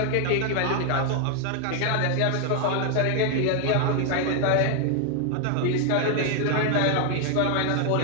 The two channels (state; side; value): different; both; correlation 0.00